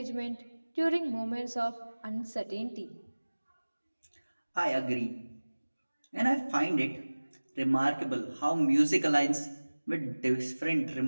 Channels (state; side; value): inverted; both; correlation -1.00